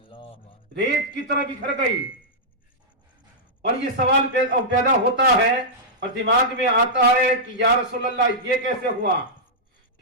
ریت کی طرح بکھر گئی۔ اور یہ سوال پیدا ہوتا ہے اور دماغ میں آتا ہے کہ یا رسول اللہ یہ کیسے ہوا؟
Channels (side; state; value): both; normal; correlation -0.10